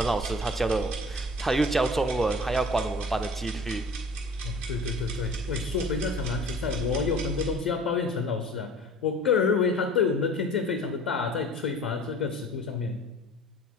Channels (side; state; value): both; normal; correlation 0.45